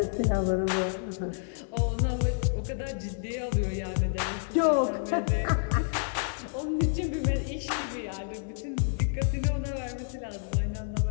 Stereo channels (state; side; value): silent; right; digital silence